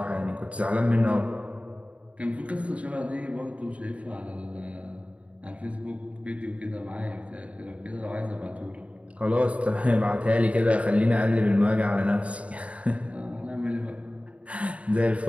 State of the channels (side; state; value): left; late; 0.064 ms